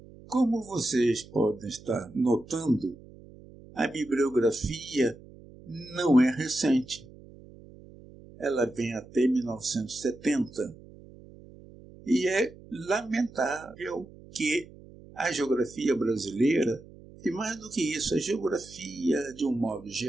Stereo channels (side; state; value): right; noise; hum, 20 dB below the sound